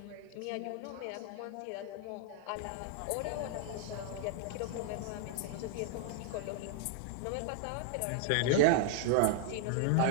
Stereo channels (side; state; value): both; different; correlation 0.00